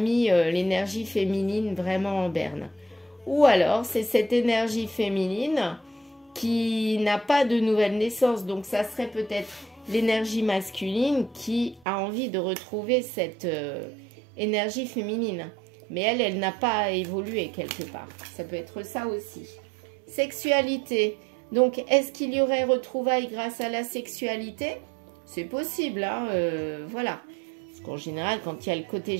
l'énergie féminine vraiment en berne. Ou alors, c'est cette énergie féminine qui n'a pas de nouvelle naissance. Donc, ça serait peut-être l'énergie masculine qui a envie de retrouver cette énergie féminine. Mais elle n'a pas évolué quelque part. Ça peut être ça aussi. Sexualité. Donc, est-ce qu'il y aurait retrouvailles grâce à la sexualité? C'est possible, hein, voilà. Parce qu'en général, quand il y a le côté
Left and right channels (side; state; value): left; drops out; at 11.9 s